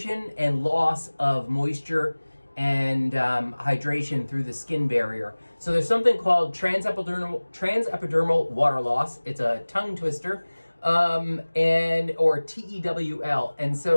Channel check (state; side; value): inverted; both; correlation -1.00